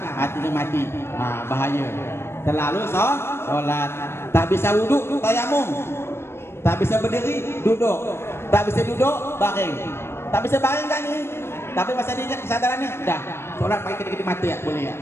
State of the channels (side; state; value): right; late; 0.12 ms